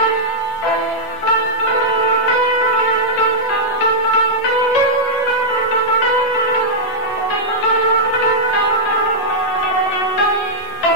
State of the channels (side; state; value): right; late; 7.9 ms